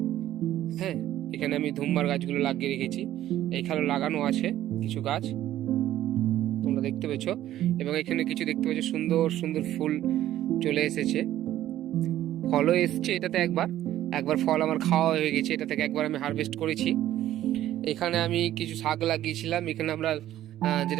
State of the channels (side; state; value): left; quieter; 13.0 dB